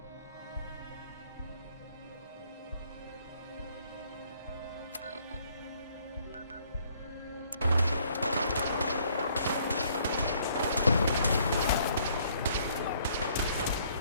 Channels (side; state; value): both; inverted; correlation -0.64